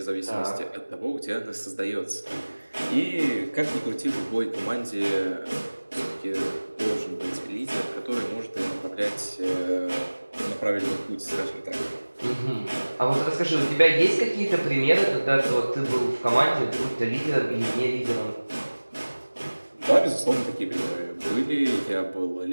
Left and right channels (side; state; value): both; inverted; correlation -1.00